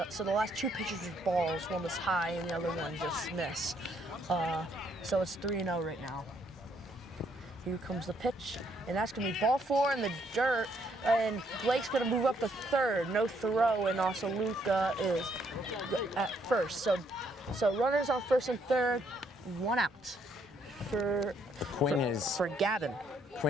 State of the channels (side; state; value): both; normal; correlation 0.70